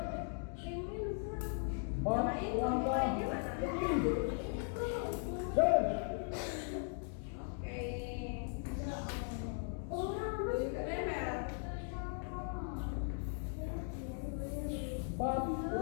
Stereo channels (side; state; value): right; silent; 52 dB below the other